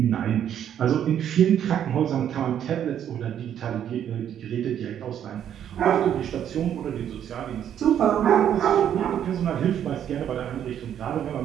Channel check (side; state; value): left; quieter; 9.8 dB